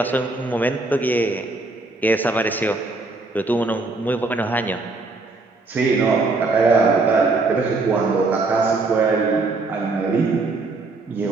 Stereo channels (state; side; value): quieter; left; 3.5 dB